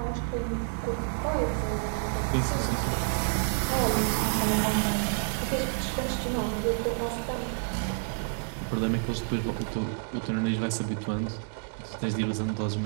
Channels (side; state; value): left; silent; 59 dB below the other